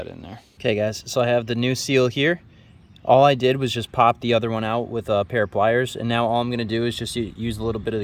in there. Okay guys, so I have the new seal here. All I did was just pop the other one out with a pair of pliers, and now all I'm gonna do is just use a little bit of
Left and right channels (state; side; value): identical; both; correlation 1.00